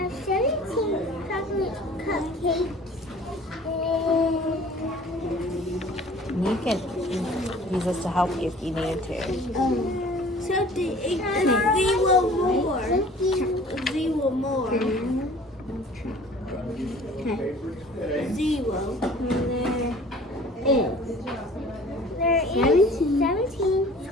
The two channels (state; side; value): normal; both; correlation 0.48